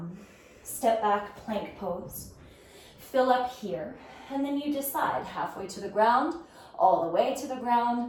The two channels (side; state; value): both; identical; correlation 1.00